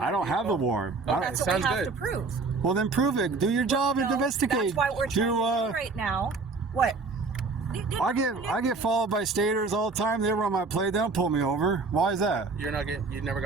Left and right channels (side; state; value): left; quieter; 4.0 dB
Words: have the vehicle. warrant. Okay, That's what sounds we have good. to prove. Well, then prove it. Do your job and No, investigate. That's why we're trying to do right now. What? I get followed by staters all the time. They run my plate. They don't pull me over. Why is that? You never